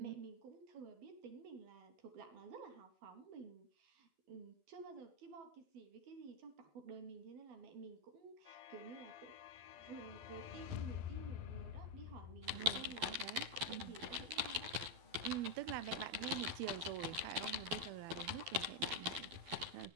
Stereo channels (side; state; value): left; late; 12 ms